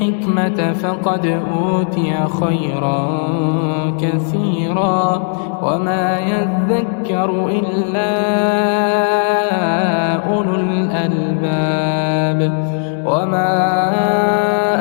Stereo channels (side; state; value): right; silent; digital silence